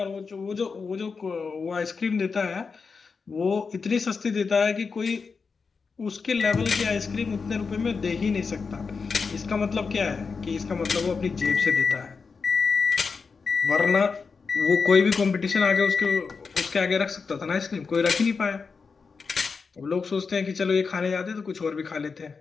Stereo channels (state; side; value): quieter; right; 5.0 dB